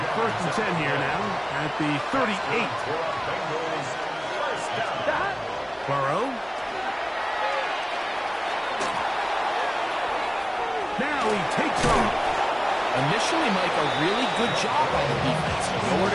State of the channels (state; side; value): identical; both; correlation 1.00